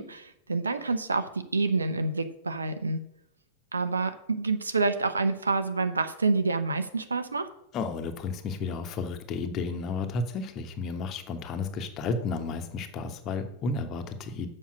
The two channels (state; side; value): inverted; both; correlation -0.48